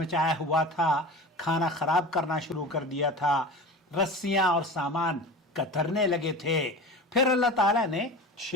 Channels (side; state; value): both; normal; correlation 0.33